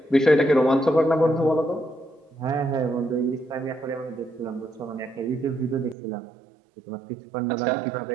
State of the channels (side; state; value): left; drops out; at 6.0 s